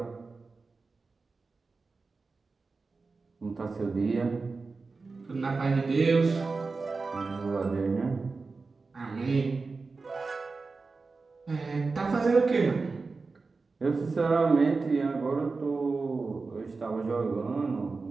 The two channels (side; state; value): left; quieter; 4.1 dB